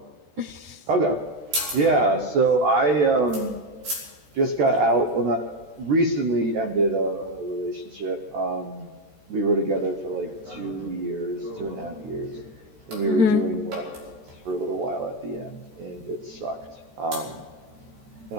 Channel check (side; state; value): left; late; 13 ms